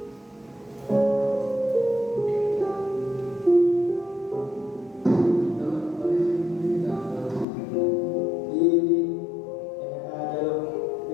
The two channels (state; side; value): drops out; right; at 7.5 s